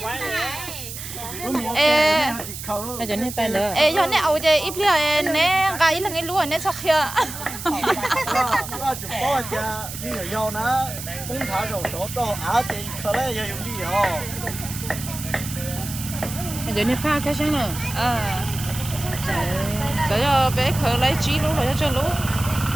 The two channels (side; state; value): right; noise; hiss, 9 dB below the sound